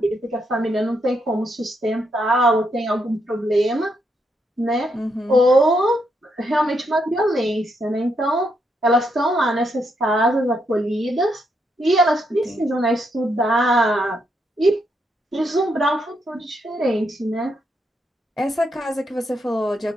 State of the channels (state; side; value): normal; both; correlation 0.79